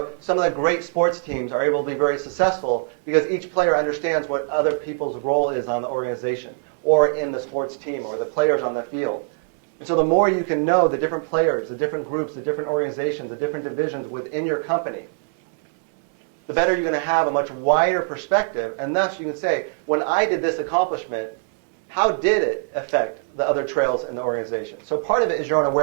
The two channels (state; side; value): silent; left; 64 dB below the other